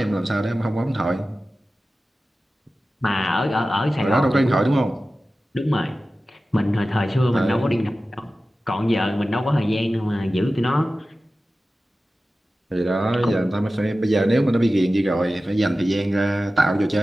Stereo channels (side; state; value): both; normal; correlation 0.95